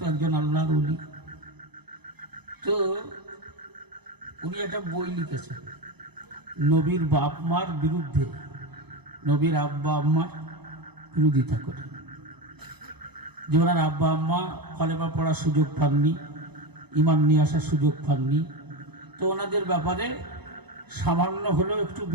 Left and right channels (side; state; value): left; late; 0.98 ms